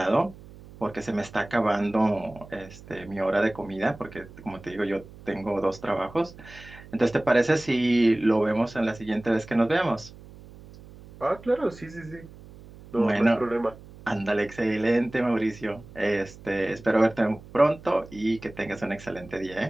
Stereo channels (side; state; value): right; noise; hum, 19 dB below the sound